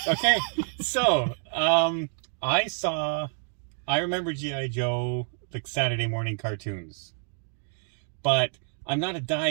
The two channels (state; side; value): silent; left; 59 dB below the other